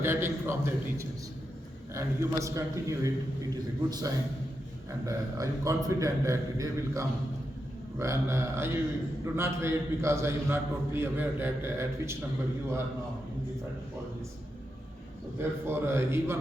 from their teachers. And you must continue it. It is a good sign. And I am confident that the day will come when I do not wait, because I am not totally aware that at which number you are now in the federal colleges. So therefore,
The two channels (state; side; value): normal; both; correlation 0.86